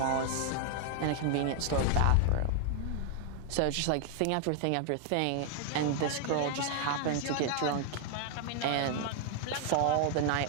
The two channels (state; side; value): different; both; correlation 0.00